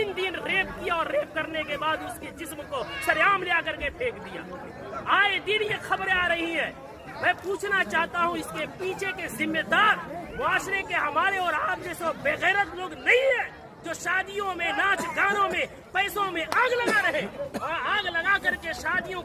دن ریپ کیا اور ریپ کرنے کے بعد اس کے جسم کو سریعام لے کر کے پھینک دیا۔ آئے دن یہ خبریں آ رہی ہیں۔ میں پوچھنا چاہتا ہوں، اس کے پیچھے کے ذمہ دار معاشرے کے ہمارے اور آپ جیسے بے غیرت لوگ نہیں ہیں جو شادیوں میں، ناچ گانوں میں، پیسوں میں آگ لگا رہے اور آگ لگا کر کے شادیوں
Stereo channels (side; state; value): both; identical; correlation 1.00